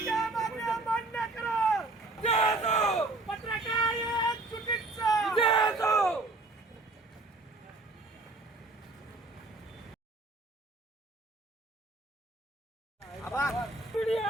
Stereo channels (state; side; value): quieter; left; 3.1 dB